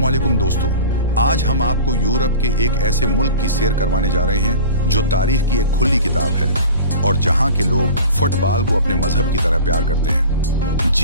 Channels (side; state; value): both; inverted; correlation -0.38